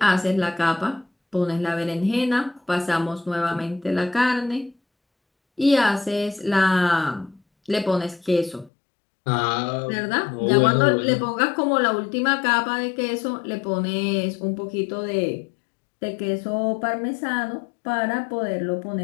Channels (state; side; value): drops out; right; at 8.7 s